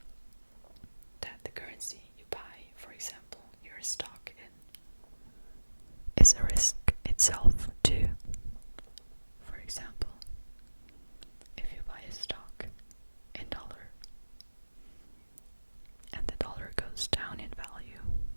that the currency you buy, for example, your stock in, is a risk itself too. For example, if you buy a stock in dollar and the dollar goes down in value,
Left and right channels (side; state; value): both; inverted; correlation -1.00